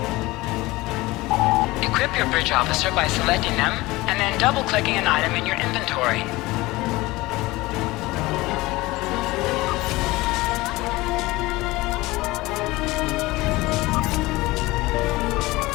Equip your bridge officer by selecting them and then double-clicking an item in your inventory.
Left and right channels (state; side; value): quieter; right; 20.3 dB